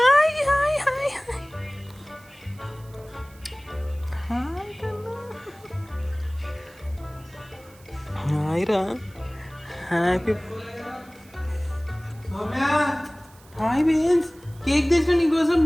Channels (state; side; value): noise; right; hiss, 26 dB below the sound